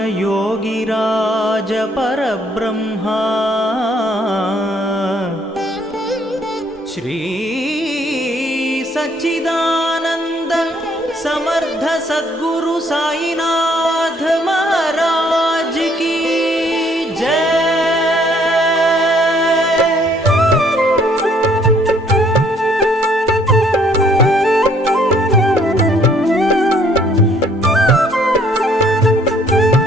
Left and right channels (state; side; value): normal; both; correlation 0.63